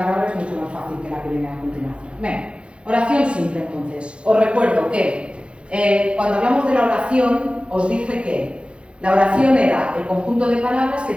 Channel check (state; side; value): late; left; 0.058 ms